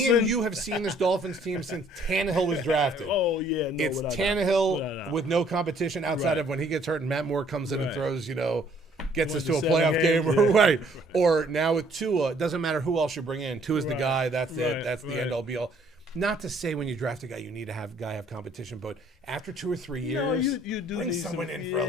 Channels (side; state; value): both; normal; correlation 0.62